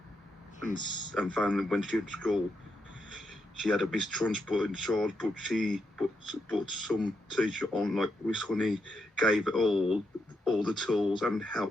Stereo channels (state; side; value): normal; both; correlation 0.82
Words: And found that when she was at school, she had a mistrust in charge, but some teacher on like Miss Honey gave her all the tools and